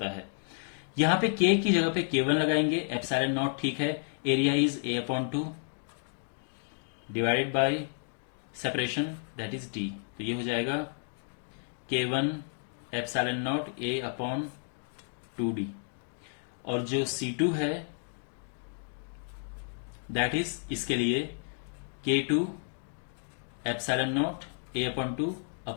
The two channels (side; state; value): right; silent; 57 dB below the other